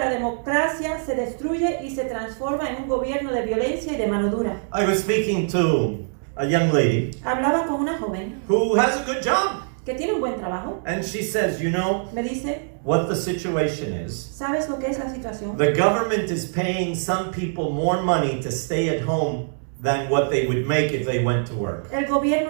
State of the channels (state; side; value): silent; left; digital silence